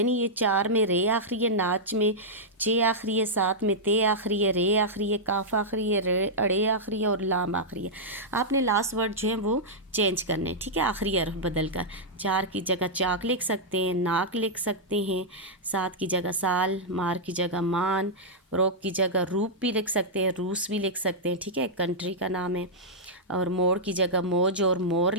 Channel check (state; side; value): normal; both; correlation -0.09